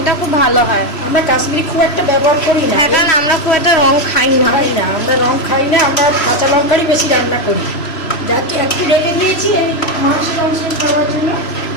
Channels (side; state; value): right; late; 3.0 ms